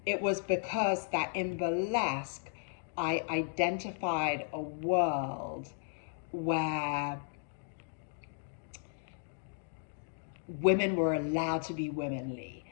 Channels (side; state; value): right; silent; digital silence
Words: It was because that in burlesque, I identified a world where women were allowed to be womanly.